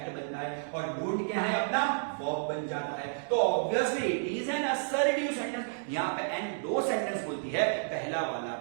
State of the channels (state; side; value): silent; left; digital silence